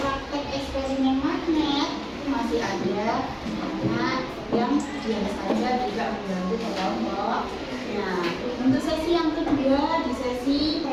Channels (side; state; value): both; identical; correlation 1.00